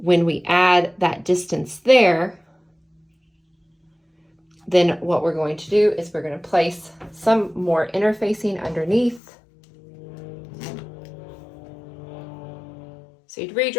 we add that distance there, then what we're going to do is we're going to place some more interfacing underneath. So you'd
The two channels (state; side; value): drops out; right; at 9.2 s